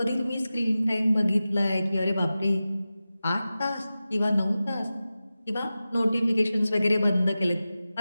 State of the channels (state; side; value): inverted; both; correlation -0.95